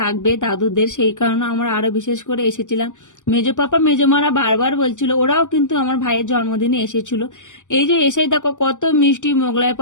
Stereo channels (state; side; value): late; right; 0.86 ms